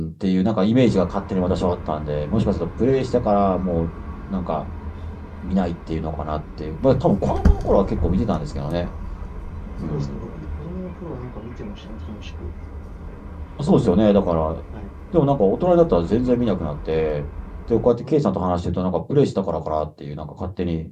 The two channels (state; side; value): identical; both; correlation 1.00